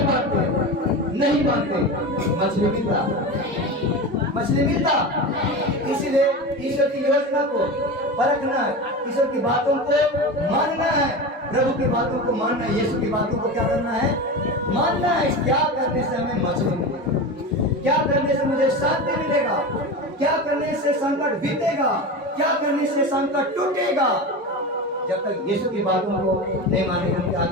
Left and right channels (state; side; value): normal; both; correlation 0.25